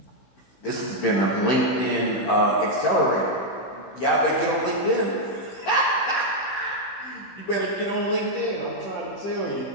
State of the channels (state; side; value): late; right; 15 ms